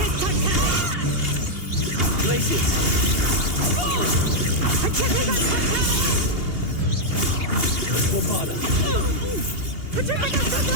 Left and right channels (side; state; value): left; late; 2.8 ms